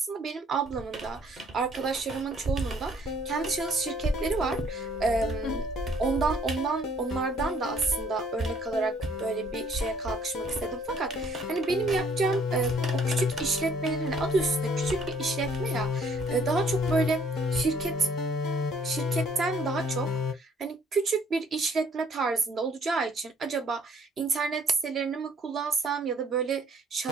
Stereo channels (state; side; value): normal; both; correlation 0.61